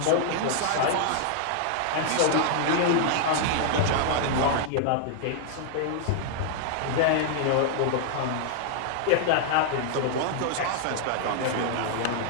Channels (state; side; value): different; both; correlation -0.01